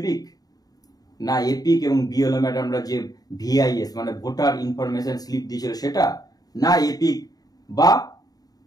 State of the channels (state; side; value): late; right; 0.18 ms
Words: না, এপিক এবং বিএলও ম্যাডামরা যে ভিআইএস মানে ভোটার ইনফরমেশন স্লিপ দিয়েছিল সেটা, না এপিক বা